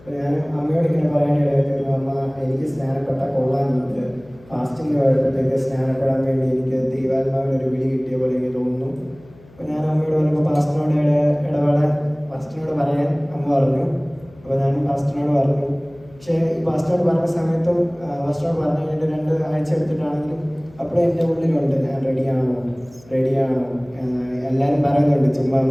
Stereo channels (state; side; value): noise; left; hum, 24 dB below the sound